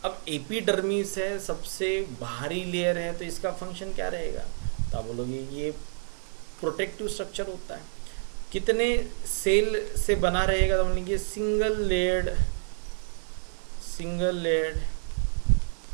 अब एपिडर्मिस है, सबसे बाहरी लेयर है, तो इसका फंक्शन क्या रहेगा, तो आप बोलोगे ये प्रोटेक्टिव स्ट्रक्चर होता है। कितने सेल से बना रहेगा, तो बोलेंगे सिंगल लेयर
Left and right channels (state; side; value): silent; left; 59 dB below the other